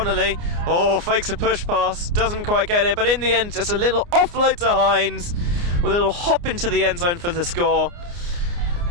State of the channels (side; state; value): left; late; 29 ms